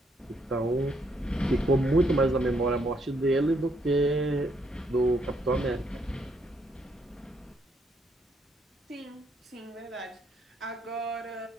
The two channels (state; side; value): normal; both; correlation 0.72